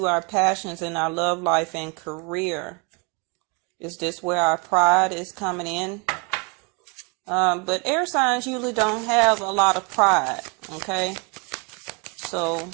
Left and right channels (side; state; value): left; quieter; 32.4 dB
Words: our passions in our love life and career. Is this where our pride is coming in? But air signs usually don't have a lot of pride, okay? So,